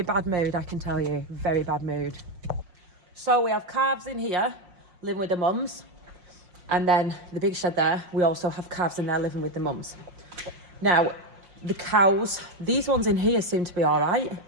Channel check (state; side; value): late; left; 5.7 ms